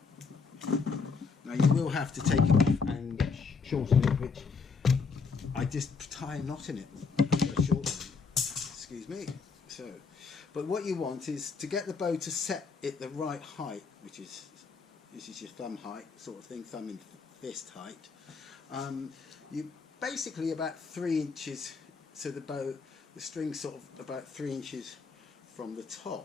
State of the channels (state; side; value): quieter; right; 5.0 dB